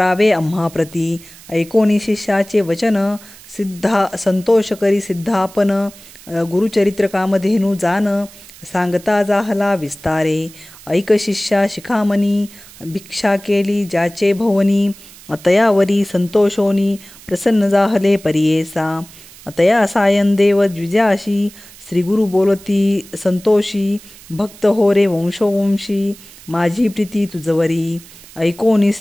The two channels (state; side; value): noise; right; hiss, 21 dB below the sound